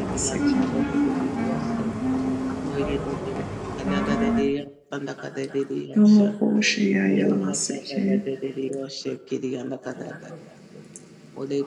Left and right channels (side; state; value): both; identical; correlation 1.00